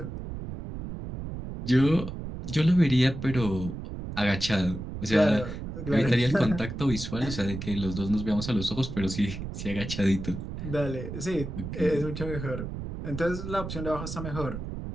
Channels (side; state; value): right; noise; rumble, 7 dB below the sound